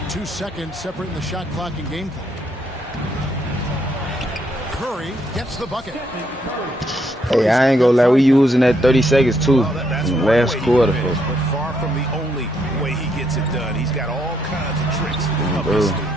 2 seconds separating the shot clock and game clock. Curry gets the bucket. Hey, I ain't gonna lie, we using that 30 seconds too in the last quarter. But far from the only way he gets it done. He's got all kinds of tricks up his sleeve.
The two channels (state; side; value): normal; both; correlation 0.74